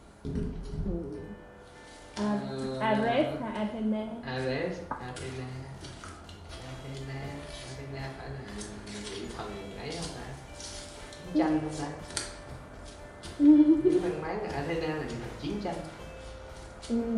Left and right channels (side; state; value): both; identical; correlation 1.00